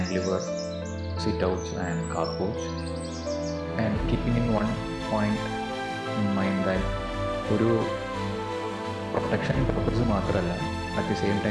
sit-outs and carporch, and keeping in one point in mind that ഒരു protection purpose മാത്രമല്ല, at the same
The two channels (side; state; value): both; identical; correlation 1.00